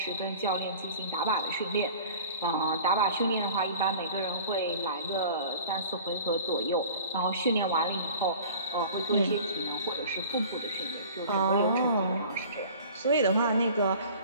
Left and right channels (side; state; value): both; inverted; correlation -0.44